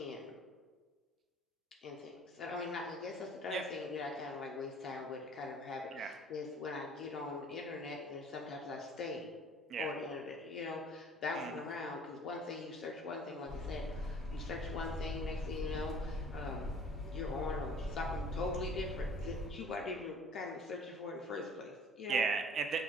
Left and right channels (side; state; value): both; normal; correlation 0.51